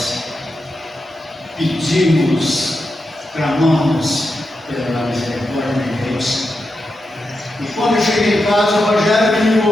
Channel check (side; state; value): both; normal; correlation 0.88